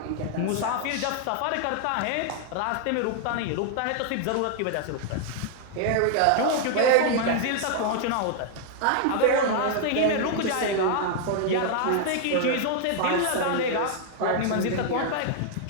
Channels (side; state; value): both; different; correlation 0.00